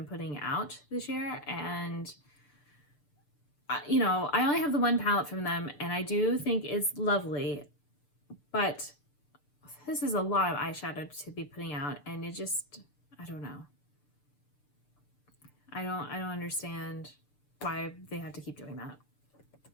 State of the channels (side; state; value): right; late; 6.8 ms